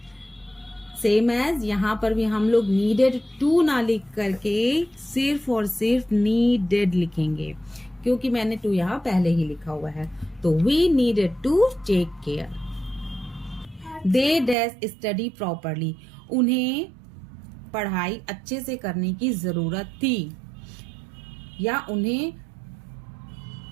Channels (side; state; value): left; drops out; at 14.6 s